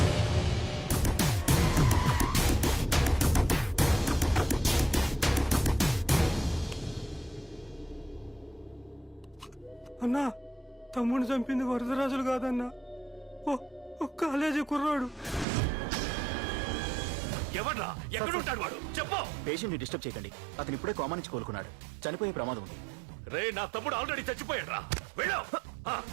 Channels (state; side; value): drops out; left; at 15.5 s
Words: అన్నా, తమ్ముడిని చంపింది వరదరాజులు కాదన్నా, ఓ కాలేజీ కుర్రాడు. ఎవడ్రా? ఎక్కడుంటాడు వాడు? చెప్పు. పేషెంట్ ని డిస్టర్బ్ చేయకండి, అతను ఇప్పుడే కోమా నుంచి కోలుకున్నాడు. చనిపోయే ప్రమాదం ఉంది. రే, నా తమ్ముడు ఆల్రెడీ చచ్చిపోయాడు రా. వెళ్ళు.